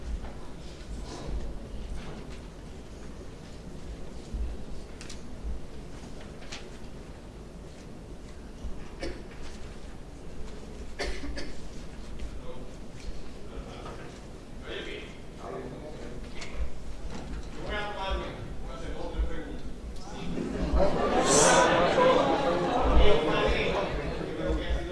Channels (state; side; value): identical; both; correlation 1.00